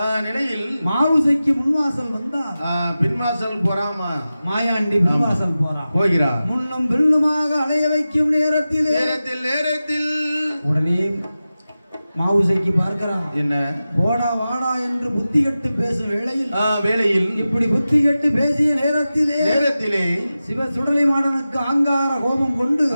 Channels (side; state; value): both; inverted; correlation -0.94